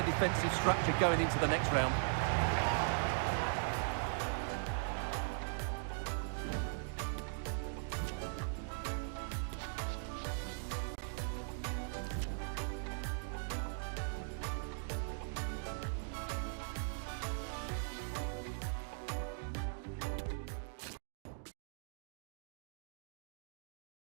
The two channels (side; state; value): left; silent; digital silence